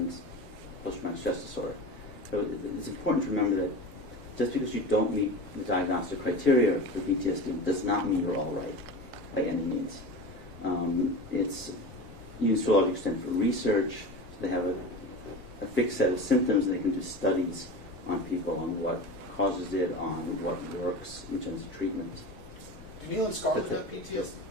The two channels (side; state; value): both; normal; correlation 0.30